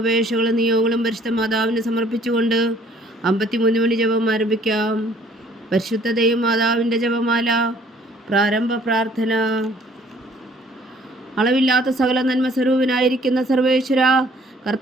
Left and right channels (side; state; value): both; normal; correlation 0.58